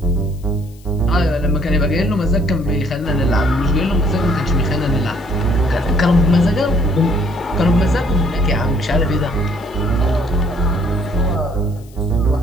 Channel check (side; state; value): left; noise; hiss, 28 dB below the sound